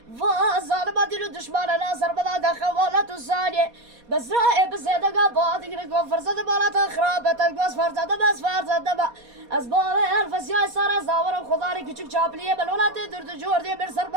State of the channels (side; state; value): left; late; 4.2 ms